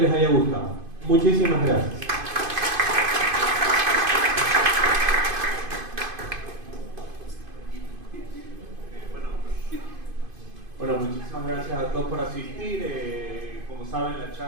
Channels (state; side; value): late; left; 2.5 ms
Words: haya gustado. Muchísimas gracias. Bueno, muchísimas gracias a todos por asistir. Como saben, la